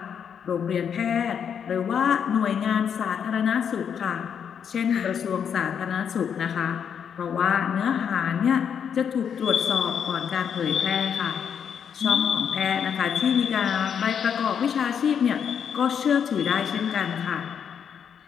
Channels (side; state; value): right; quieter; 7.7 dB